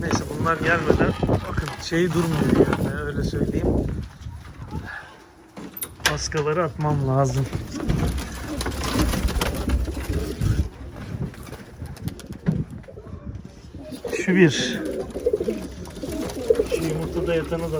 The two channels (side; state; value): both; identical; correlation 1.00